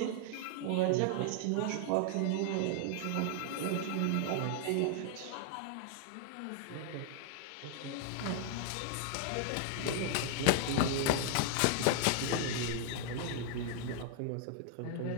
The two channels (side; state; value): both; different; correlation 0.00